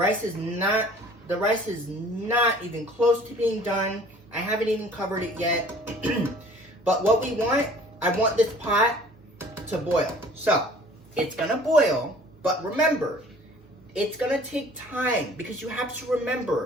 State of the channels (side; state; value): both; normal; correlation 0.51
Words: is not even close to being done. I haven't even covered it yet. But what we want, I want this pot to boil. So it's gonna boil, but remember, it's gonna take time because you have to